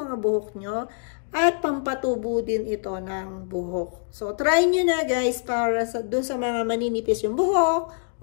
buhok nyo. At pampatubo din ito ng buhok. So, try nyo na guys para dun sa mga maninipis yung buhok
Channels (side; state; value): right; silent; digital silence